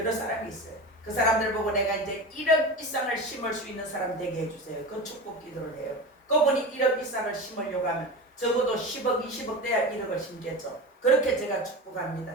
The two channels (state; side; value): normal; both; correlation 0.27